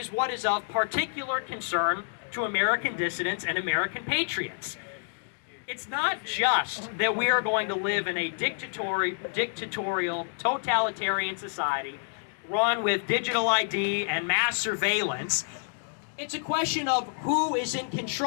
what is of particular concern to American dissidents and American patriots. It's not just that we are going to live in a dictatorial, totalitarian society run with digital ID and mass surveillance. It's a question of who is in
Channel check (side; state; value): right; silent; digital silence